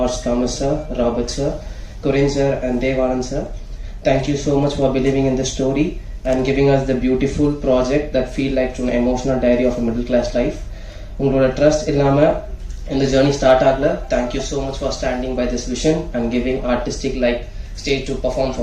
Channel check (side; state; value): both; identical; correlation 1.00